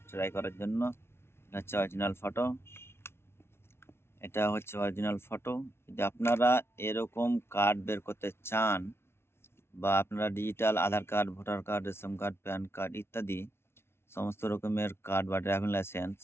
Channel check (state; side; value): late; right; 0.12 ms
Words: ট্রাই করার জন্য। এটা হচ্ছে অরিজিনাল ফটো। এটা হচ্ছে অরিজিনাল ফটো। যদি আপনারা এরকম কার্ড বের করতে চান বা আপনারা digital Aadhaar card, voter card, ration card, PAN card ইত্যাদি সমস্ত রকমের কার্ড বা ড্রাইভিং লাইসেন্স